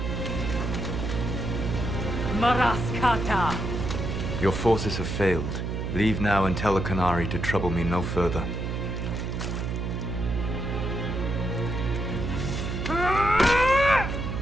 Maraskata! Your forces have failed. Leave now and tell the Canary to trouble me no further.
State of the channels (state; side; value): noise; right; hum, 3 dB below the sound